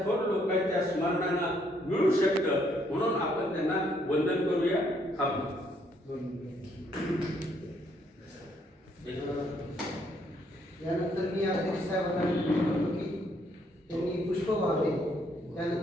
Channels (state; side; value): normal; both; correlation 0.70